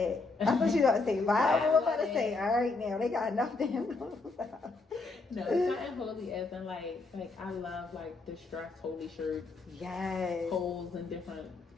I thought you were about to say Bible. I'm about to say, all right now, they got enough damn. No, it's not holy as in like I love like distressed holy shirts. Yes. Holes in different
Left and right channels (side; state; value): right; quieter; 3.7 dB